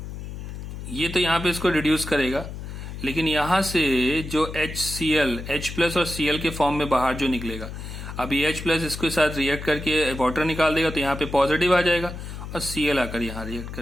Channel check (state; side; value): noise; left; hum, 9 dB below the sound